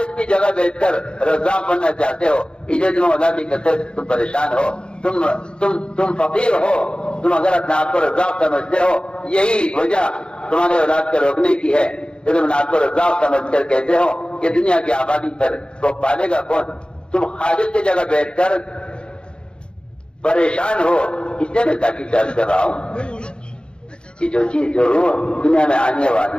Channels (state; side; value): late; right; 0.052 ms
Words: کی جگہ بیٹھ کر رزاق بننا چاہتے ہو، اسے تم اولاد کی کثرت سے تم پریشان ہو، تم فقیر ہو، تم اگر اپنے آپ کو رزاق سمجھتے ہو، یہی وجہ تمہارے اولاد کو روکنے کی ہے کہ تم آپ کو رزاق سمجھ کر کہتے ہو کہ دنیا کی آبادی پر وہ پالے گا کون؟ تم خالص کی جگہ بیٹھ کر پریشان ہو، اس لیے میں تاکید درج کر رہا ہوں کہ جو چیز جو روح دنیا میں آنے والی